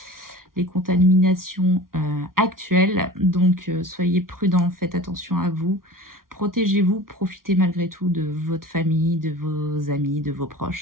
les contaminations actuelles. Donc soyez prudents, faites attention à vous, protégez-vous, profitez malgré tout de votre famille, de vos amis, de vos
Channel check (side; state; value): left; late; 0.92 ms